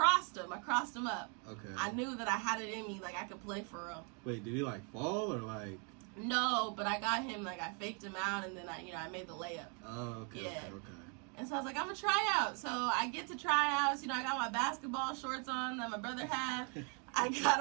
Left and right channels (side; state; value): left; quieter; 37.0 dB